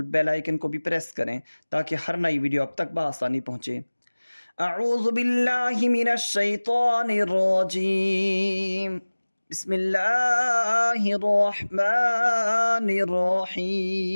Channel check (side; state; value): both; inverted; correlation -1.00